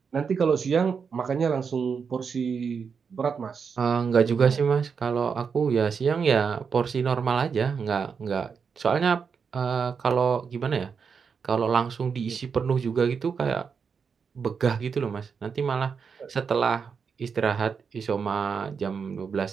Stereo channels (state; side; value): quieter; left; 6.0 dB